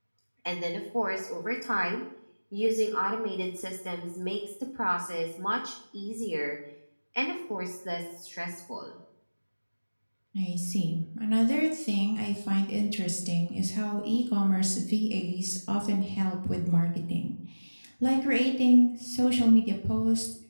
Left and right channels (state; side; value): inverted; both; correlation -1.00